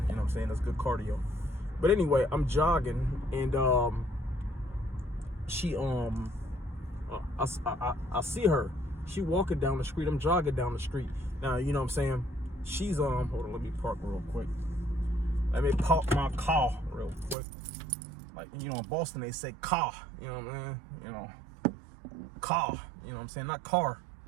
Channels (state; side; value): drops out; left; at 17.4 s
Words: you know what I'm saying? That's good cardio. But anyway, I'm jogging and she I see her. She walking down the street. I'm jogging down the street. Now, you know what I'm saying? She's hold on, let me park real quick. Let me park my car real quick. Like, you know, in Boston, they say car. You know what I mean? You know, car. You know what I'm saying? Not car.